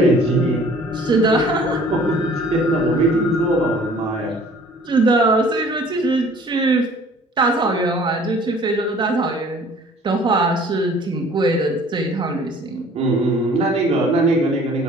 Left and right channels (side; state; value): both; normal; correlation 0.52